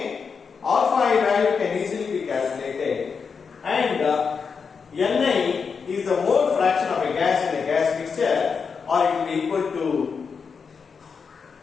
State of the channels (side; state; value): right; quieter; 5.7 dB